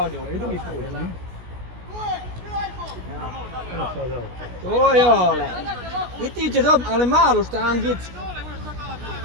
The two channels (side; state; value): left; late; 16 ms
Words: i drugi put. To je ole. I ti će dobiti, ali malu štangicu.